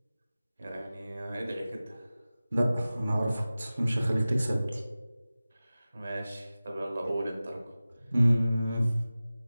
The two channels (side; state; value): both; inverted; correlation -0.97